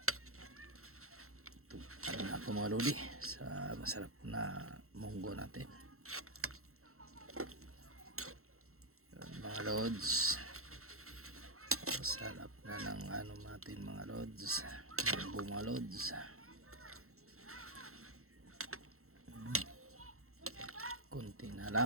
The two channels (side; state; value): left; late; 0.63 ms